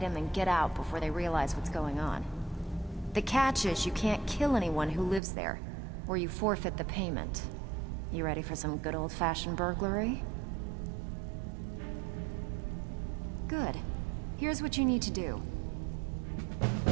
and get out before they realize what's going on. The catch is you can't kill anyone who lives there, or you forfeit the payment. You ready for some good old-fashioned burglary? Good. Here's what you need to do.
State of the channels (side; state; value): left; drops out; at 5.2 s